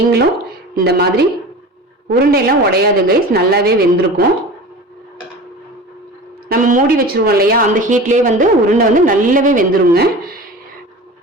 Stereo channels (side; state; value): both; normal; correlation 0.35